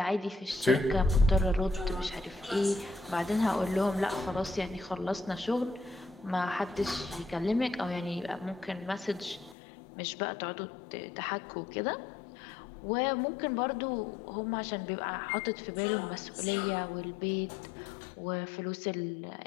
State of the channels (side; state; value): right; drops out; at 9.6 s